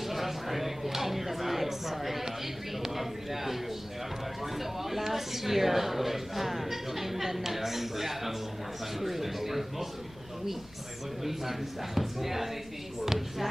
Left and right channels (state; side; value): noise; left; rumble, 22 dB below the sound